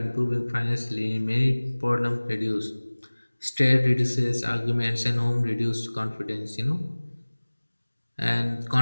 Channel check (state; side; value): inverted; both; correlation -1.00